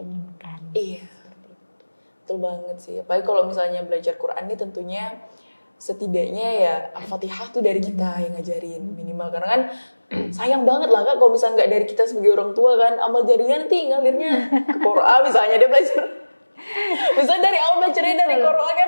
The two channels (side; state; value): both; inverted; correlation -1.00